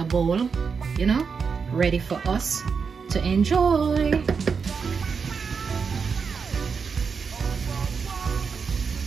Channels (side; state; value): left; quieter; 5.7 dB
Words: bowl, you know, ready for us to enjoy.